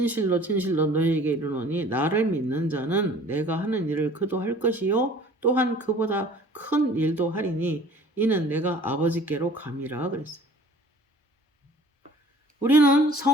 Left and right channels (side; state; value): both; normal; correlation 0.49